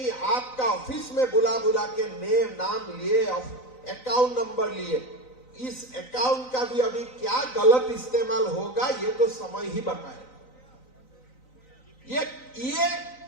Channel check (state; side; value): late; right; 3.9 ms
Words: आपका ऑफिस में बुला बुला के नाम लिए, अकाउंट नंबर लिए। इस अकाउंट का भी अभी क्या गलत इस्तेमाल होगा ये तो समय ही बताए। ये